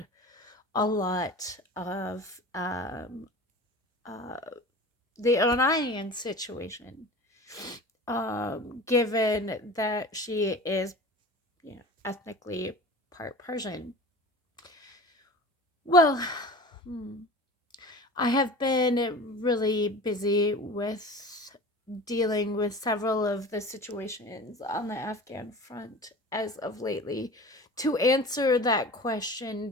a lot of uh, the Iranian situation, given that she is, ethnically part Persian. Well, hmm, I have been really busy with dealing with several of the situations on the Afghan front as of lately to answer that question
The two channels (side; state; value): both; normal; correlation 0.37